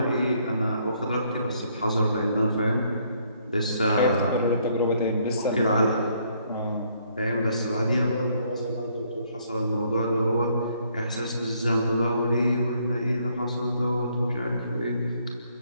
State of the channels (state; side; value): inverted; both; correlation -0.68